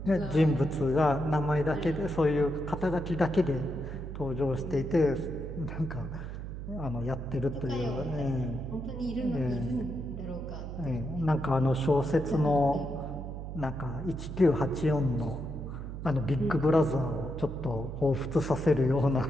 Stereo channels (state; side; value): noise; right; hum, 8 dB below the sound